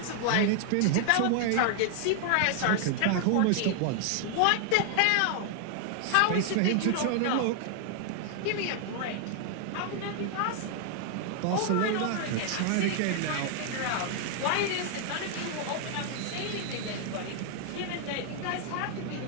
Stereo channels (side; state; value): both; different; correlation 0.00